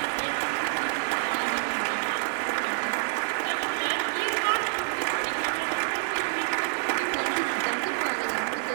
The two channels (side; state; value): left; silent; digital silence